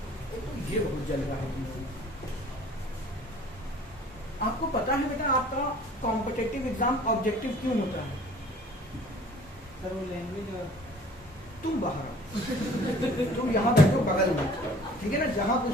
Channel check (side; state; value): both; normal; correlation 0.50